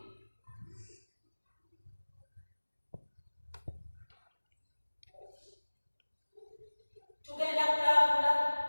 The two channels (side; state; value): both; inverted; correlation -1.00